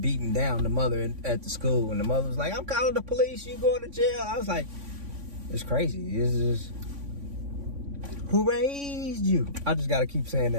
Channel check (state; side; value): late; left; 3.5 ms